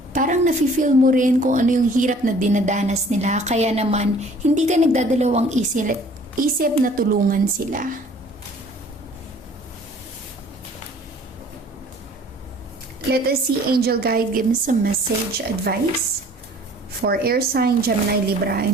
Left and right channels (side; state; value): both; normal; correlation 0.53